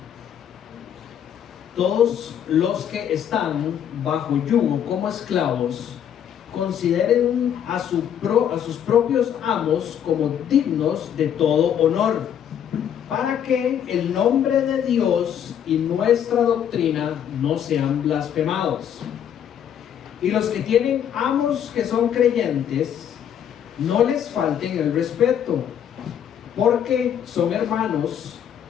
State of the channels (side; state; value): right; quieter; 9.2 dB